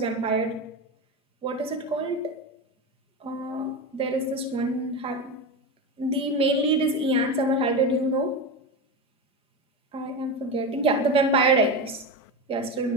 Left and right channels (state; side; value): normal; both; correlation 0.19